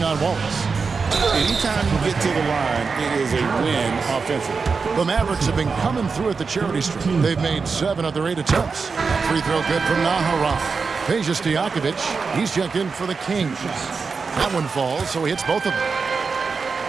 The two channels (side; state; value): left; quieter; 4.9 dB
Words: on Wallace. Anytime you get to the line, it is a win offensively. The Mavericks have been coming through at the charity stripe. They've made 7 of their 8 attempts. Free throw good from Nahara. Peja Stojakovic, he's checked in for the Kings. That one falls, so he hits both of them.